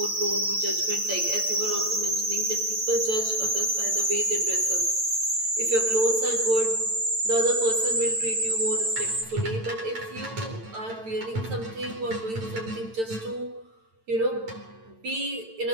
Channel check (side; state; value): left; late; 9.0 ms